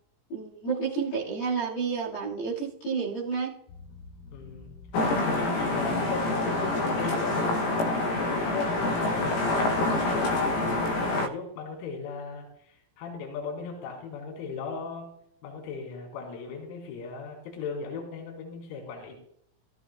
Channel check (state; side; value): late; right; 17 ms